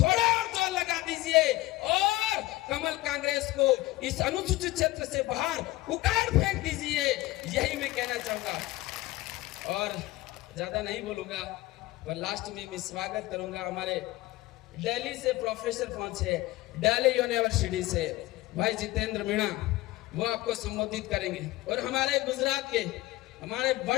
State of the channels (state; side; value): quieter; right; 18.6 dB